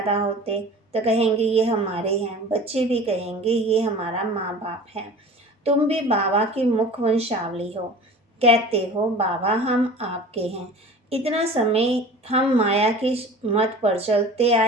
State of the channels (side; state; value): both; normal; correlation 0.40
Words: होते तो कहेंगे ये हमारे हैं, बच्चे भी कहेंगे ये हमारा माँ बाप है। तुम भी बाबा की मुख वंशावली हो, कहते हो बाबा हम आपके हैं। इतना समय हम माया की मत पर चलते